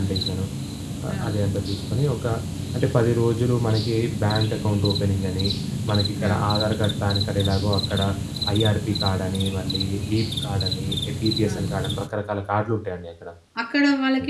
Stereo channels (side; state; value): both; identical; correlation 1.00